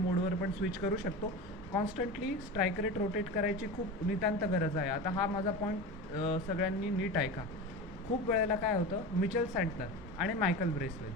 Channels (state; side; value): normal; both; correlation 0.27